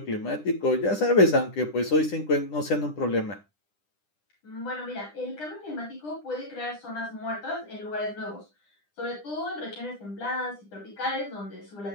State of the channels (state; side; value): late; right; 10 ms